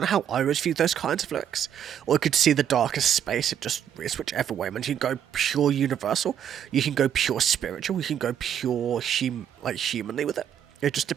of how I always view those kinds of lyrics. Or you could see the darkest space, it's whichever way, man. You can go pure universal, you can go pure spiritual, you can go pure, humanly with it. It just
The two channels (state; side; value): quieter; left; 9.4 dB